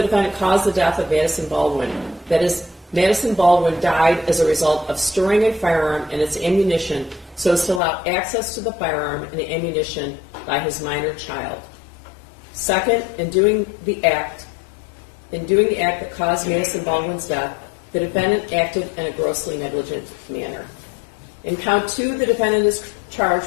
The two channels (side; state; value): right; drops out; at 7.8 s